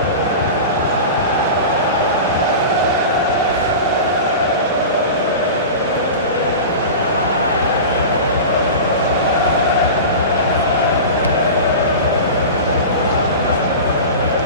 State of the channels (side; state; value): both; inverted; correlation -0.30